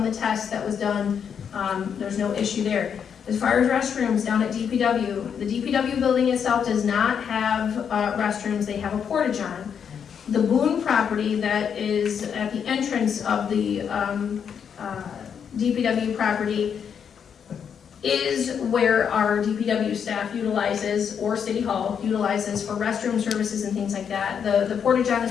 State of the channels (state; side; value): quieter; right; 7.5 dB